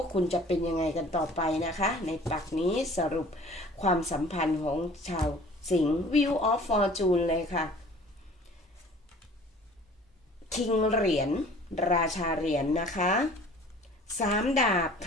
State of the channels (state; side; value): normal; both; correlation 0.49